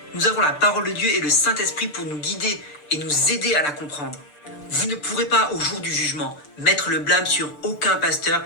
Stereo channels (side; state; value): right; late; 6.8 ms